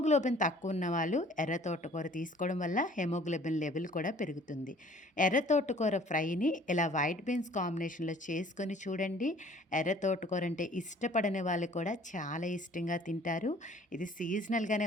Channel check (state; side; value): normal; both; correlation 0.53